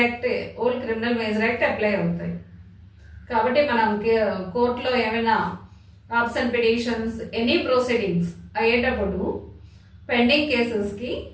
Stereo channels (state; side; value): identical; both; correlation 1.00